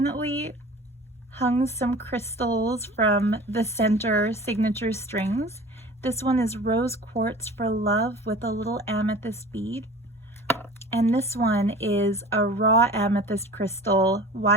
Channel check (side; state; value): both; normal; correlation 0.41